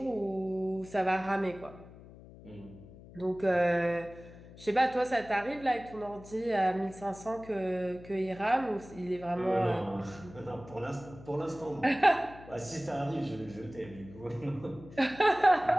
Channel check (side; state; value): left; noise; hum, 18 dB below the sound